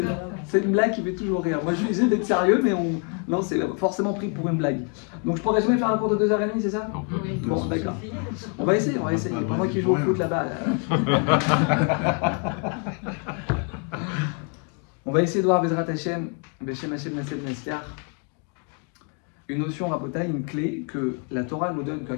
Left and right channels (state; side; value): quieter; right; 39.1 dB